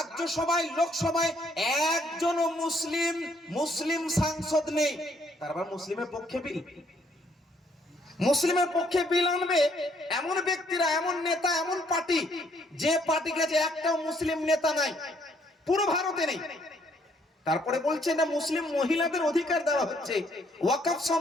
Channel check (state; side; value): normal; both; correlation 0.67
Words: লোকসভায় একজনও মুসলিম সাংসদ নেই। তারপর মুসলিমের পক্ষে বিল, মুসলিমের পক্ষে বিল আনবে এমন ব্যক্তিরা, এমন নেতা, এমন পার্টি, যে পার্টি কাছে একটাও মুসলিম নেতা নাই, পুরো ভারতে নেই। তারপরে বলছে না মুসলিম মহিলাদের অধিকার দেওয়া হচ্ছে। ওয়াকফ